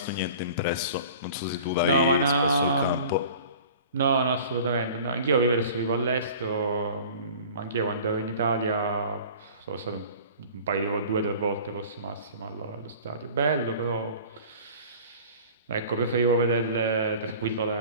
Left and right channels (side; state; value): both; inverted; correlation -0.43